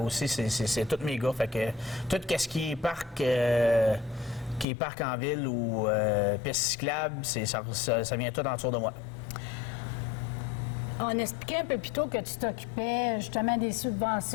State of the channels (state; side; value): drops out; right; at 4.7 s